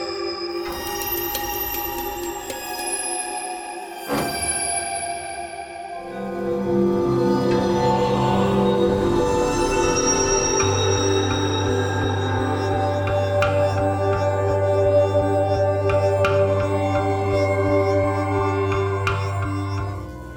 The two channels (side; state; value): both; identical; correlation 1.00